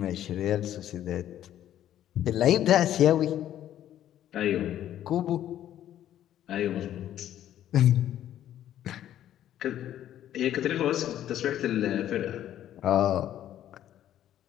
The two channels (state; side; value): quieter; right; 11.7 dB